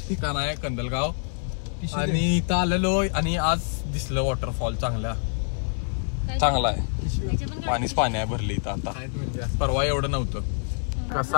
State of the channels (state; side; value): silent; right; 61 dB below the other